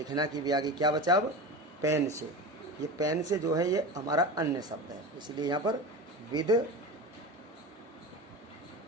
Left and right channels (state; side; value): normal; both; correlation 0.28